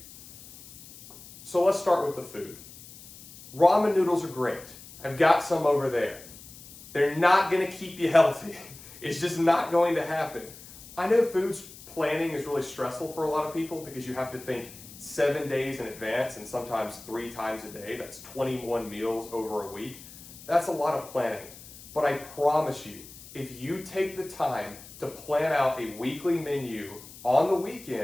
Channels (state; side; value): noise; left; hiss, 18 dB below the sound